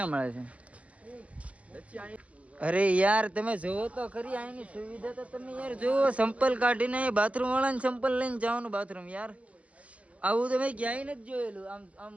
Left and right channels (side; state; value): left; late; 0.064 ms